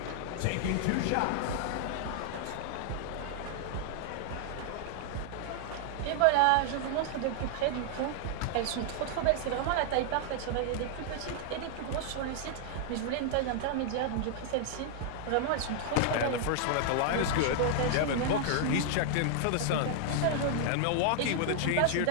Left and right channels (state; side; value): different; both; correlation 0.00